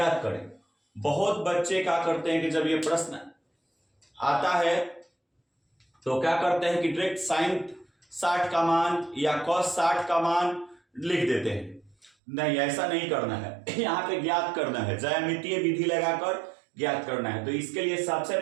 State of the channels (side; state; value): left; drops out; at 12.1 s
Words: करें। बहुत बच्चे क्या करते हैं कि जब ये प्रश्न आता है तो क्या करते हैं कि डायरेक्ट साइन 60 का मान या कॉस 60 का मान लिख देते हैं। नहीं, ऐसा नहीं करना है। यहाँ पे ज्ञात करना है, ज्यामितीय विधि लगाकर ज्ञात करना है। तो इसके लिए सबसे